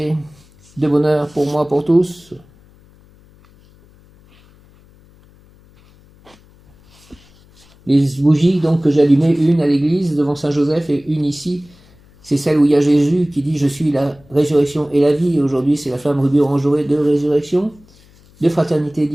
de bonheur pour moi, pour tous. Les bougies donc que j'ai allumées, une à l'église devant Saint-Joseph et une ici, c'est celle où il y a Jésus qui dit « Je suis la résurrection et la vie ». Aujourd'hui, c'est la flamme rubis orange dorée de résurrection, de fraternité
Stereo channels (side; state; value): left; noise; hum, 28 dB below the sound